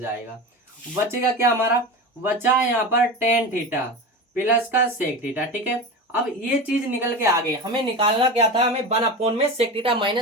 बचेगा क्या हमारा, बचा यहाँ पर टेन थीटा प्लस का सेक थीटा। ठीक है, अब ये चीज निकल के आ गई, हमें निकालना क्या था, हमें 1 अपॉन में सेक थीटा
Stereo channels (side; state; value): both; normal; correlation 0.26